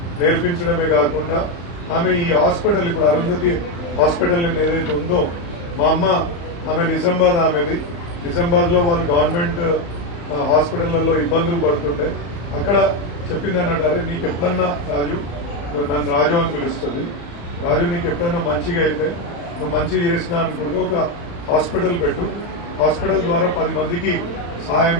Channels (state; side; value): late; right; 35 ms